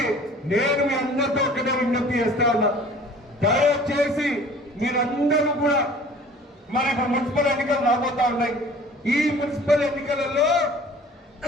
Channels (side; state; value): both; normal; correlation 0.48